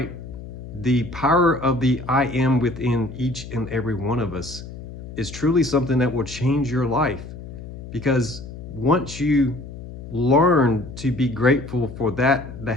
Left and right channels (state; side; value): noise; left; hum, 12 dB below the sound